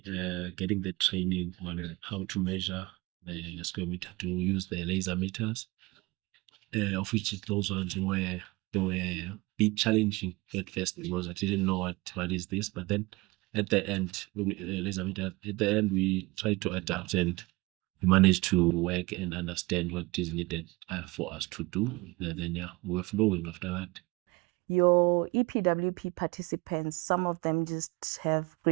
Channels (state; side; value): quieter; left; 23.2 dB